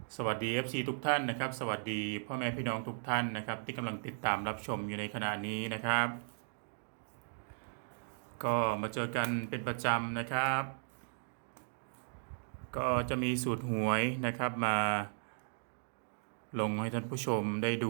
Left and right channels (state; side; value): silent; left; digital silence